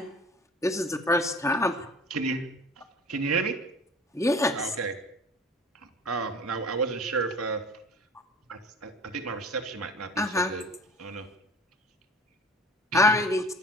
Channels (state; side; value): normal; both; correlation 0.44